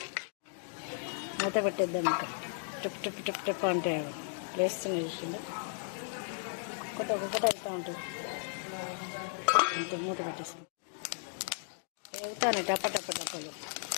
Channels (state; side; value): silent; right; digital silence